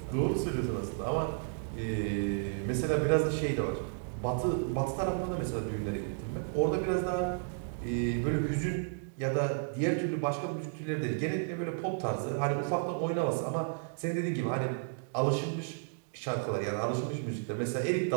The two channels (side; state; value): left; silent; digital silence